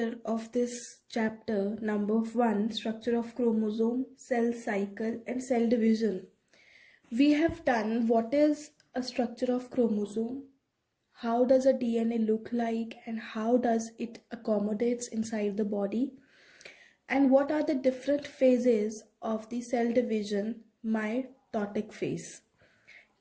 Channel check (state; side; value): identical; both; correlation 1.00